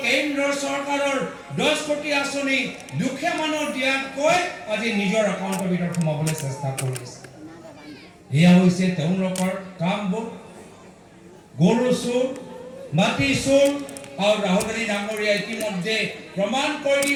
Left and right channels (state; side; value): identical; both; correlation 1.00